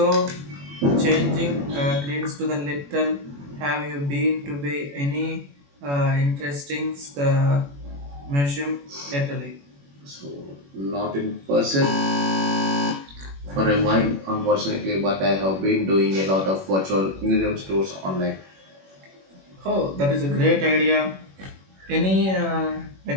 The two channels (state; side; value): late; left; 21 ms